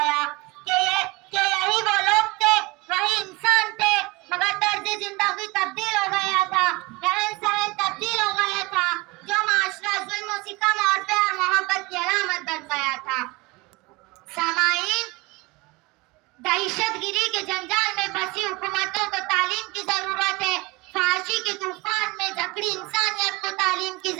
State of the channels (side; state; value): left; quieter; 24.2 dB